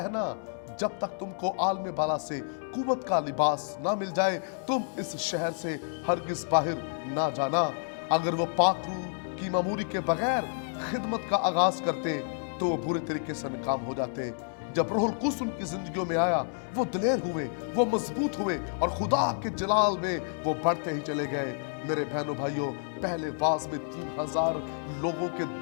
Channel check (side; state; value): right; silent; digital silence